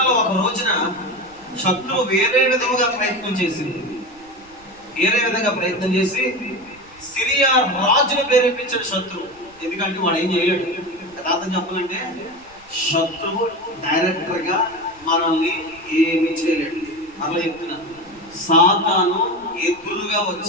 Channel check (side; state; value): right; noise; rumble, 28 dB below the sound